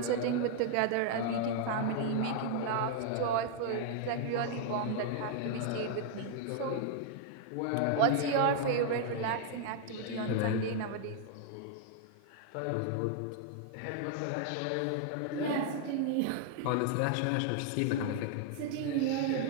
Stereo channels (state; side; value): different; both; correlation 0.00